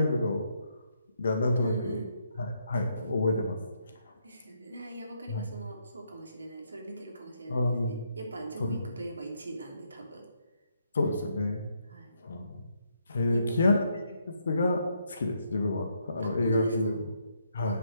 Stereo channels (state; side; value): inverted; both; correlation -0.75